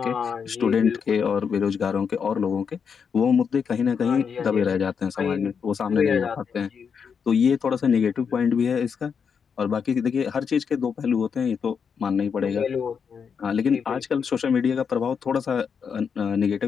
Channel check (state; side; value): quieter; right; 6.5 dB